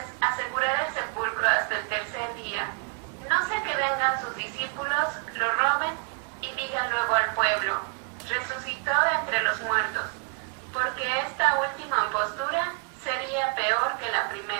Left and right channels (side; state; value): left; quieter; 36.3 dB